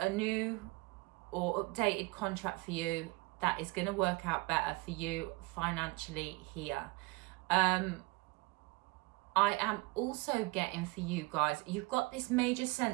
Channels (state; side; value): quieter; left; 24.7 dB